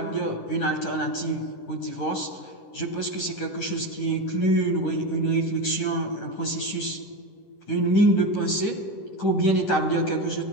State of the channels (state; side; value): late; right; 10 ms